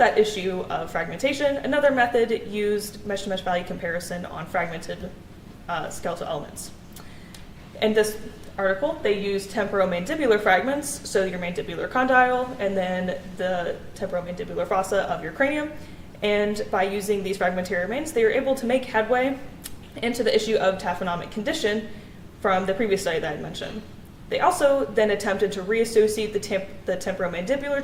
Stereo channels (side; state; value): both; identical; correlation 1.00